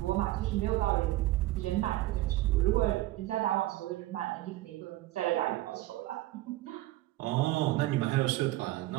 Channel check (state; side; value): quieter; left; 16.9 dB